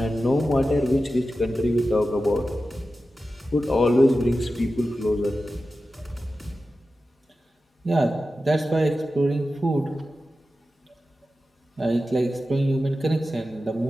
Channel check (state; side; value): normal; both; correlation 0.93